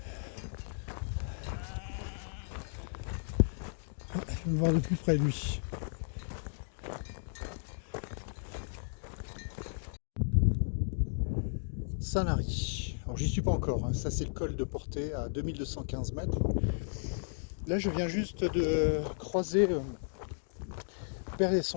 Je vais me voir de plus près de lui. Sanary. Alors j'y suis pas encore, hein. Ça c'est le col de Portet à 2215 mètres. Là je viens juste de croiser le père et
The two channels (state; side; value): silent; right; digital silence